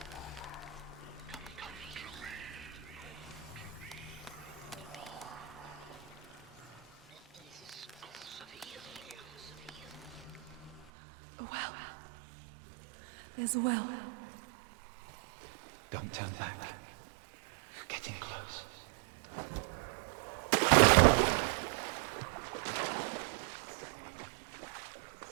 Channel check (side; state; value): left; drops out; at 10.9 s